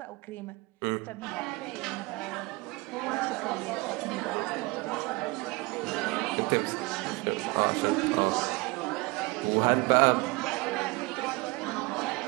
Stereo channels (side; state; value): left; quieter; 24.8 dB